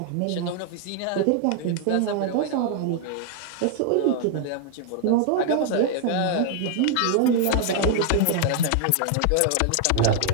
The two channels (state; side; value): different; both; correlation 0.00